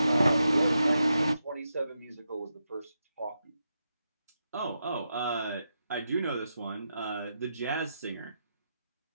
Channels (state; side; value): inverted; both; correlation -0.86